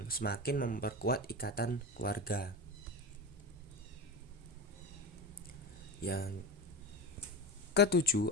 semakin memperkuat ikatan keluarga. Yang ketujuh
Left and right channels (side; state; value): both; normal; correlation 0.23